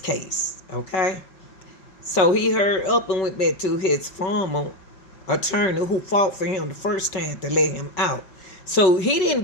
okay? So he hurried up and went back to his former attorney who fought for him the first time to let him out. So he didn't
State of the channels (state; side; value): late; right; 5.3 ms